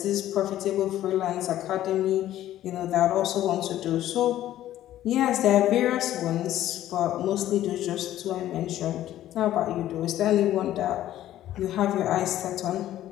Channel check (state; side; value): quieter; right; 13.1 dB